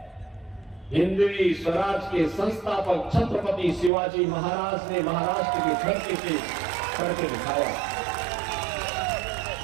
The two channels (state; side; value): drops out; left; at 3.9 s